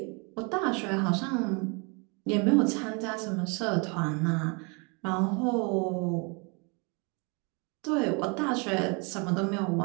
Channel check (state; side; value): quieter; left; 32.1 dB